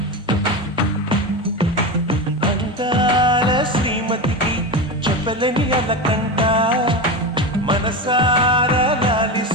అందాల శ్రీమతికి చెప్పలేని అలకంట, మనసారా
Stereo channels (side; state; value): both; normal; correlation 0.20